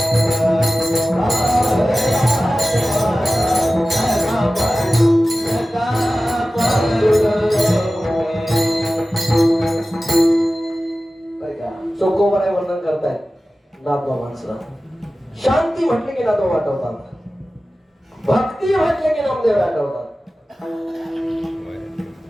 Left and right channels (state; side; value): normal; both; correlation 0.96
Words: पांडुरंग चोकोबाराय वर्णन करतायत नाथबाबांचं. शांती म्हटले की नाथबाबा आठवतात, भक्ती म्हटले की नामदेव आठवतात.